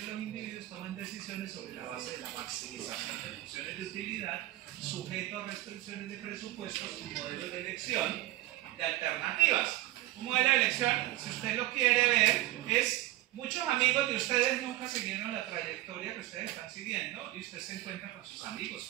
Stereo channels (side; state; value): left; quieter; 16.7 dB